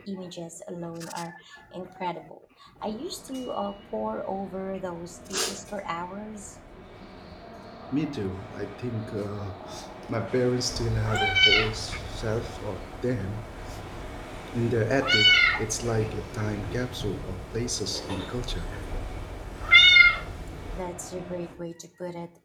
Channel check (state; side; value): identical; both; correlation 1.00